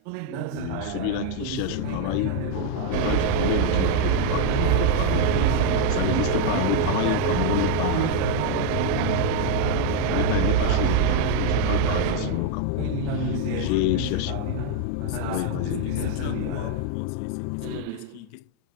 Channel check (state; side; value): different; both; correlation 0.01